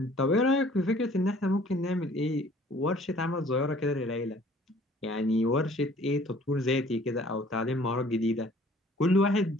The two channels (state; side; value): normal; both; correlation 0.54